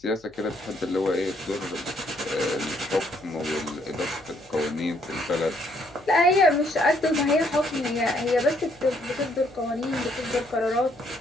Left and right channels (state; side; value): noise; left; hum, 29 dB below the sound